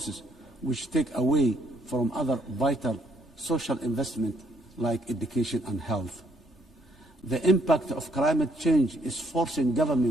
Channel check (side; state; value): both; normal; correlation 0.70